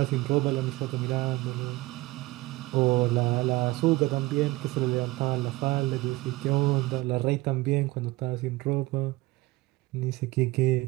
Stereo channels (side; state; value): left; quieter; 20.6 dB